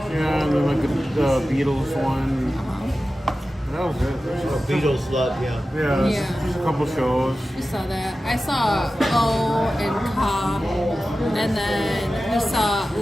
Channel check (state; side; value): normal; both; correlation 0.94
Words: yeah, and then like the Beatles one. That was it. Beatles love, yeah. Yeah, Yeah. just a couple shows. We saw that. I saw O and Ka, and then we saw